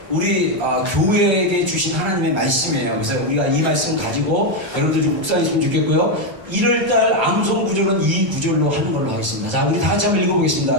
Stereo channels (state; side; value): late; left; 1.3 ms